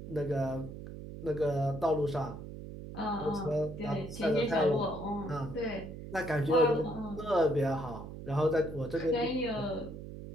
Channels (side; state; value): right; noise; hum, 11 dB below the sound